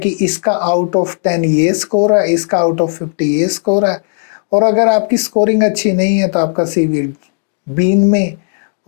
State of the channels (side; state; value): right; silent; digital silence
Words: इसका आउट ऑफ 10 ये स्कोर है, इसका आउट ऑफ 50 ये स्कोर है। और अगर आपकी स्कोरिंग अच्छी नहीं है तो आपका सीवी बीन में,